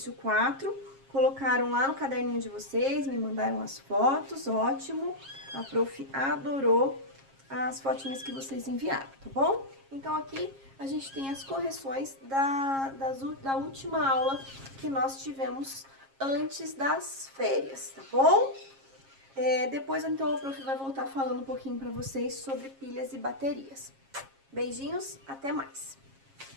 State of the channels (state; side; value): late; left; 7.4 ms